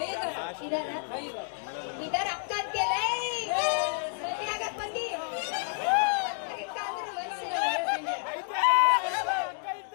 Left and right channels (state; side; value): silent; right; 58 dB below the other